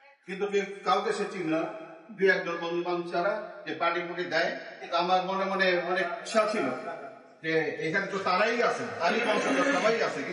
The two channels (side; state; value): both; identical; correlation 1.00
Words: কিন্তু কাউকে সে চিনি না, দু একজন বন্ধু বান্ধব ছাড়া যে পার্টি পুটি দেয়। কিন্তু আমার মনে মনে অনেক ইচ্ছা ছিল যে এখানে তো তারাই আছে, তারই বংশধর সবাই আছে,